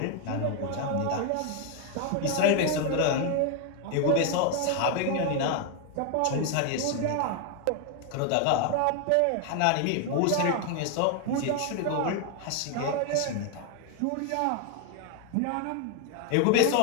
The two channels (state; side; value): different; both; correlation 0.01